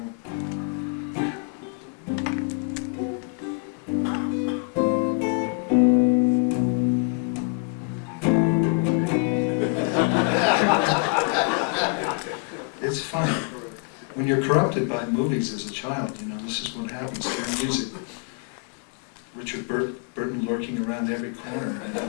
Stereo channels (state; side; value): quieter; right; 35.6 dB